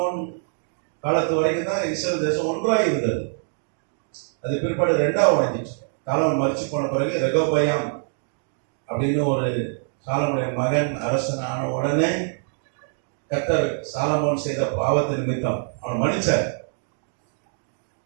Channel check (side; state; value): left; silent; digital silence